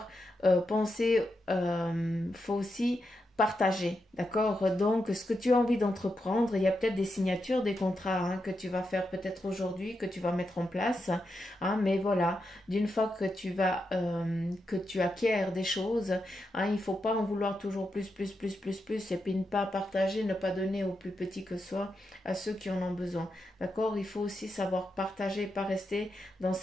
penser, faut aussi partager, d'accord? Donc, ce que tu as envie d'entreprendre, il y a peut-être des signatures, des contrats hein, que tu vas faire peut-être aujourd'hui, que tu vas mettre en place, hein, mais voilà, d'une fois que tu acquiers des choses, hein, il ne faut pas en vouloir toujours plus, et puis ne pas partager, ne pas donner aux plus petits que soi, à ceux qui en ont besoin, d'accord? Il faut aussi savoir partager, pas rester dans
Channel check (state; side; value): normal; both; correlation 0.85